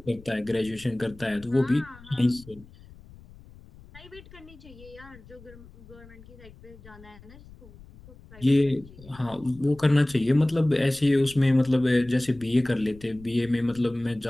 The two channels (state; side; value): noise; left; rumble, 21 dB below the sound